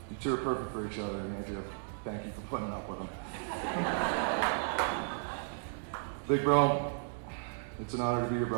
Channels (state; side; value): silent; left; digital silence